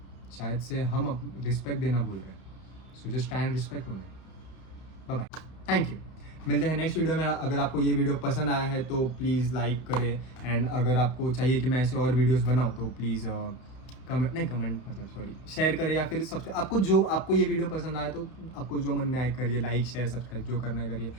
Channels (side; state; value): right; late; 32 ms